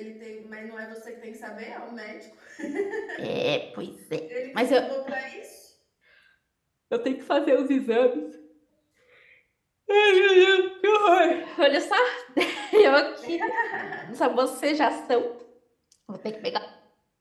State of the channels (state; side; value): identical; both; correlation 1.00